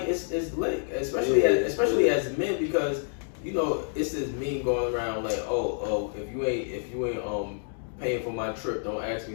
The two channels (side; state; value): right; silent; digital silence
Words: it's lit, especially as men, because you know it's this meme going around like, oh, if you ain't paying for my trip, don't ask